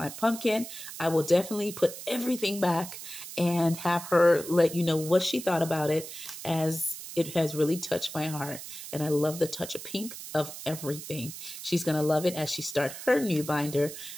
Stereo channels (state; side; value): noise; right; hiss, 11 dB below the sound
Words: pumpkin. I will definitely put everything back and have her let you know what she thought about it, as it has really touched my heart. And I love the touch of pink of everything. She's going to love it as she starts her new binder.